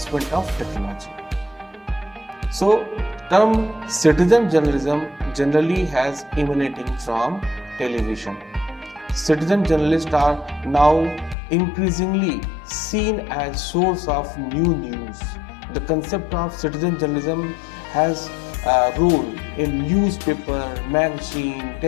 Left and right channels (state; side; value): drops out; right; at 11.4 s